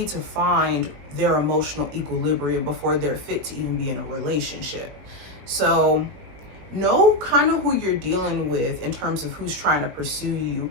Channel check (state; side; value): late; left; 20 ms